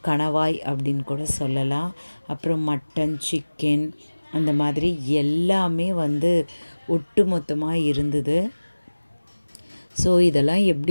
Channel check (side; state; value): both; inverted; correlation -1.00